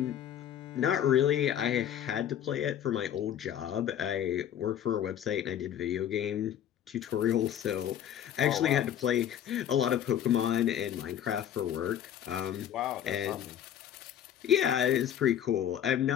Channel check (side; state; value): right; quieter; 10.2 dB